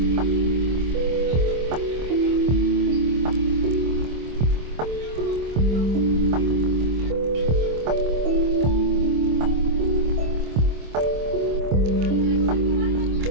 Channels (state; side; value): late; left; 25 ms